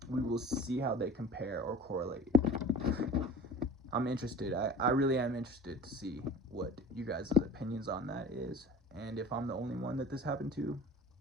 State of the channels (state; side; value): normal; both; correlation 0.41